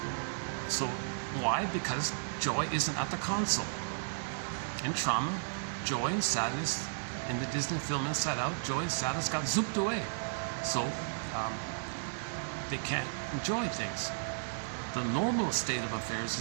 So why? Because joy isn't at the console. In trauma, joy and sadness, in the Disney film Inside Out, joy and sadness got zooped away. So they can't enjoy things. The normal state of affairs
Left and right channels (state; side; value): silent; left; digital silence